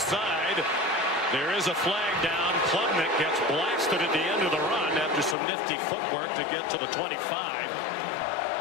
There is a flag down. Klubnik gets blasted at the end of the run after some nifty footwork to get to the 25.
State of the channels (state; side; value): drops out; right; at 5.4 s